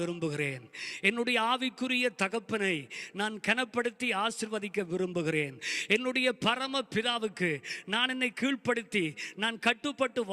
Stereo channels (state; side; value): identical; both; correlation 1.00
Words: விரும்புகிறேன். என்னுடைய ஆவிக்குரிய தகப்பனை நான் கனப்படுத்தி ஆசீர்வதிக்க விரும்புகிறேன். என்னுடைய பரம பிதாவுக்கு நான் என்னை கீழ்ப்படுத்தி நான் கட்டுப்பட்டு